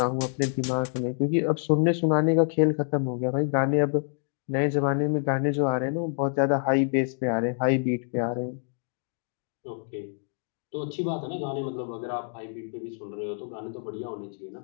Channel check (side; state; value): right; silent; 60 dB below the other